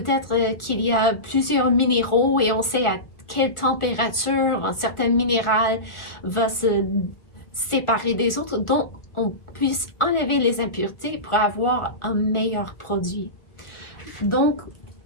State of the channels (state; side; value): late; right; 1.4 ms